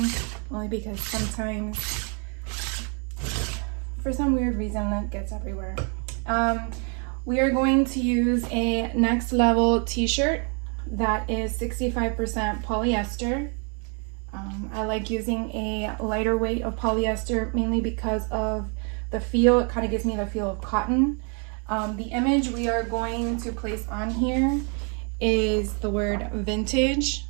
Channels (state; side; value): quieter; left; 38.1 dB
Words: only because sometimes, for some weird reason, lint gets everywhere. We are going to use a next level t-shirt that is 65% polyester. I like using a lighter weight of polyester mainly because of the feel. It kind of gives me the feel of cotton. The image we are going to place on here is the word vintage.